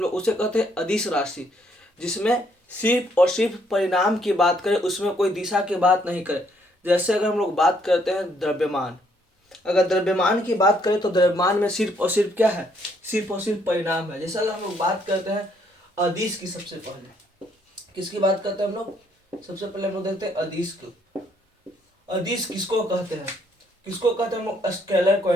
लोग, उसे कहते हैं अदिश राशि। जिसमें सिर्फ और सिर्फ परिणाम की बात करें, उसमें कोई दिशा की बात नहीं करें। जैसे अगर हम लोग बात करते हैं द्रव्यमान, अगर द्रव्यमान की बात करें तो द्रव्यमान में सिर्फ और सिर्फ क्या है, सिर्फ और सिर्फ परिणाम है। जैसे अगर हम लोग बात करते हैं अदिश की, सबसे पहले किसकी बात करते हैं हम लोग, सबसे पहले हम लोग देखते हैं अदिश को। अदिश किसको कहते हैं, किसको कहते हैं हम लोग, स्केलर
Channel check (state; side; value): normal; both; correlation 0.69